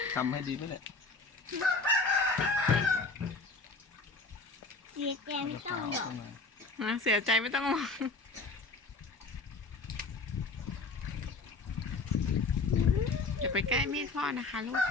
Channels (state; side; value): quieter; right; 3.9 dB